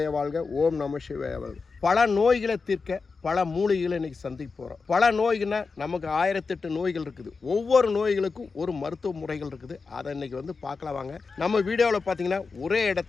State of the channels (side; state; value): right; quieter; 4.6 dB